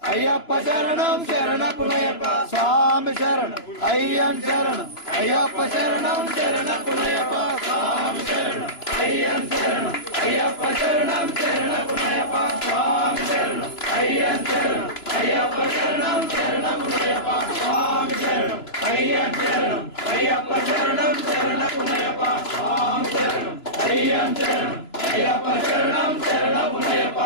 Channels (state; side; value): late; right; 2.9 ms